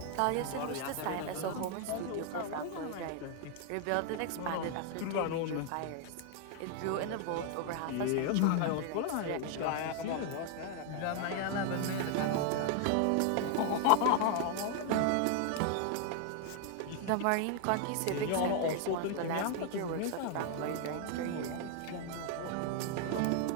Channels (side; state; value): both; different; correlation 0.00